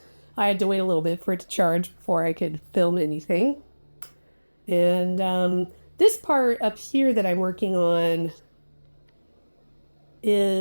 I had to wait a little bit for it to charge before I could film anything. And this part up here that I'm working on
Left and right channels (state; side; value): inverted; both; correlation -1.00